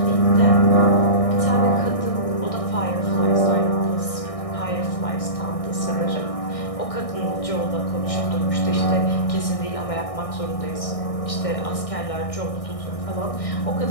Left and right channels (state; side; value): late; right; 1.6 ms